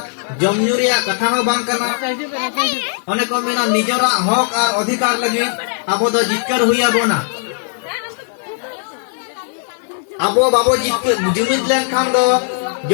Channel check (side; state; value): right; silent; 57 dB below the other